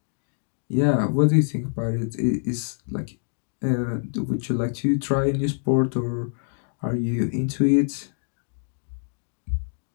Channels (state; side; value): silent; right; digital silence